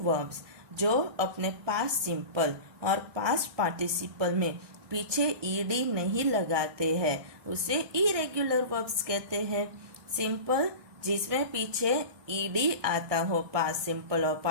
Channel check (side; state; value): left; late; 1.6 ms